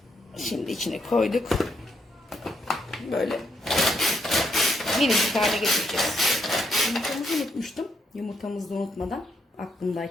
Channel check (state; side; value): normal; both; correlation 0.76